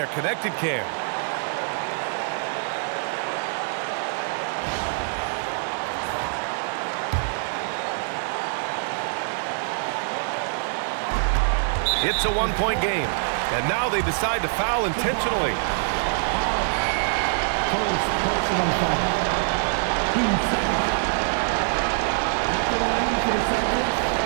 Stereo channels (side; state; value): left; silent; digital silence